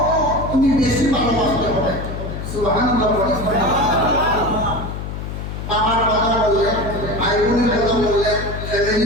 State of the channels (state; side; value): noise; left; hum, 7 dB below the sound